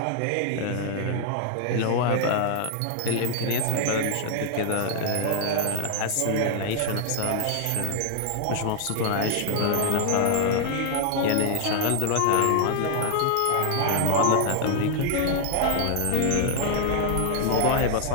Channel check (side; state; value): both; different; correlation 0.00